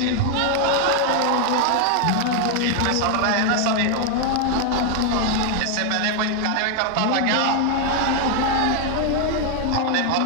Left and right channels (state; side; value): different; both; correlation 0.00